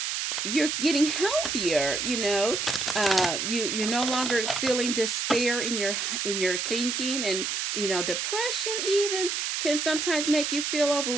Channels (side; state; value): right; noise; hiss, 1 dB below the sound